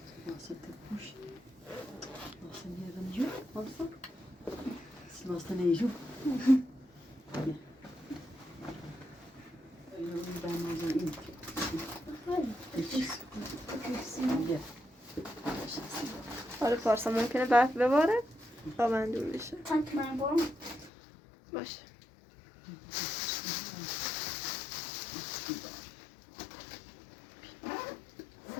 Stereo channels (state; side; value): drops out; right; at 20.9 s